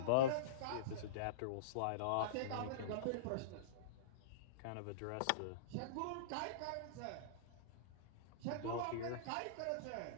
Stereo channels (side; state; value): both; different; correlation -0.05